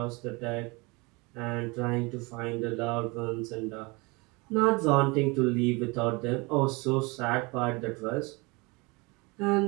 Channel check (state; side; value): quieter; left; 26.7 dB